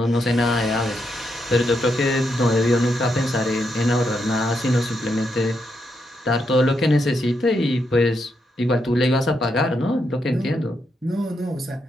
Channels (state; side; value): normal; both; correlation 0.81